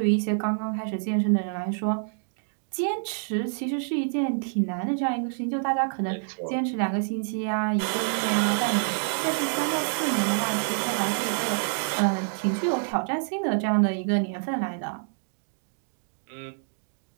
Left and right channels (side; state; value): left; silent; digital silence